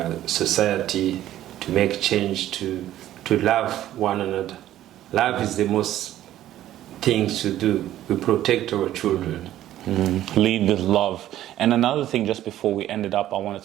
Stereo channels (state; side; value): quieter; left; 13.0 dB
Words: society, to make change to love one another. Love is the most thing to do. We protect our children. Lead with love. And another thing, just before we end it up, I want